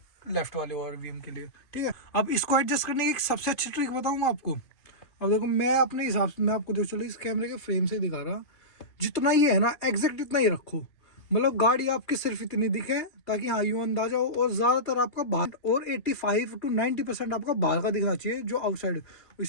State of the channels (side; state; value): right; late; 2.7 ms